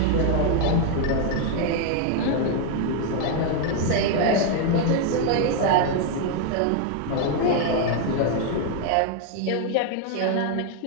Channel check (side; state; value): both; different; correlation 0.00